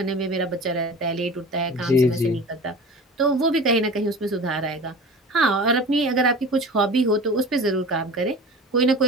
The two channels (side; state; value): both; normal; correlation 0.36